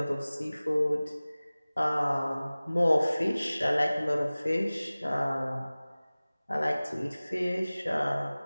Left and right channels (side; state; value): both; inverted; correlation -0.99